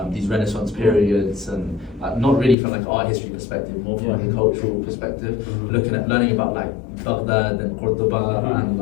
these Renaissance periods, and not really from like an art history perspective, more from like a cultural perspective, looking at learning about like Baghdad and Cordoba and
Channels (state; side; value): drops out; right; at 2.6 s